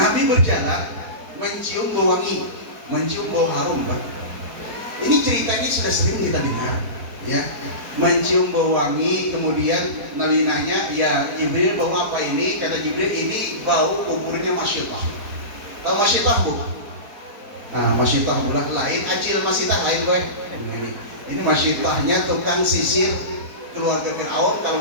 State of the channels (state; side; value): late; left; 4.5 ms